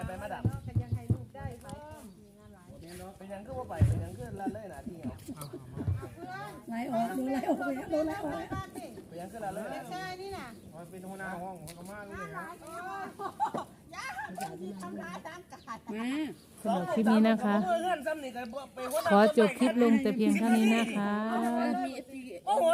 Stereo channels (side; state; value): both; identical; correlation 1.00